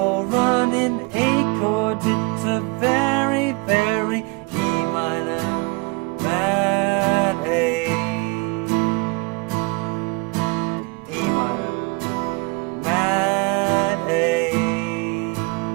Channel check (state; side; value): quieter; left; 29.0 dB